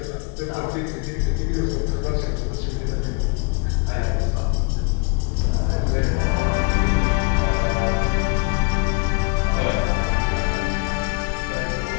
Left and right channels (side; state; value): right; quieter; 33.3 dB